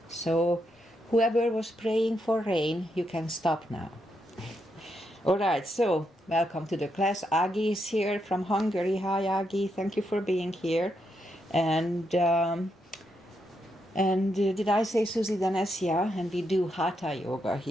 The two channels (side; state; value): both; normal; correlation 0.81